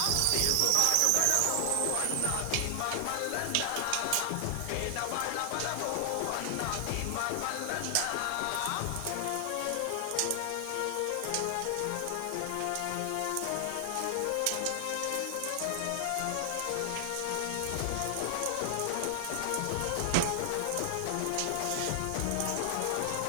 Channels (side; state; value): both; different; correlation 0.00